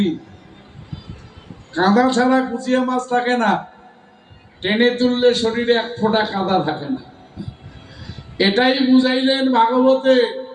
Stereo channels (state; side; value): identical; both; correlation 1.00